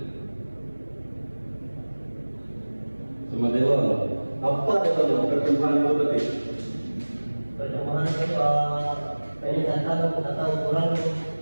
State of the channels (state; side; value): inverted; both; correlation -1.00